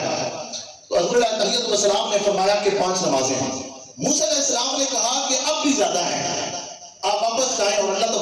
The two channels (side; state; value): both; identical; correlation 1.00